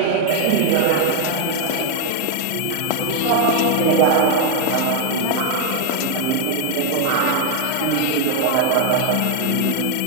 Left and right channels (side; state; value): both; different; correlation 0.00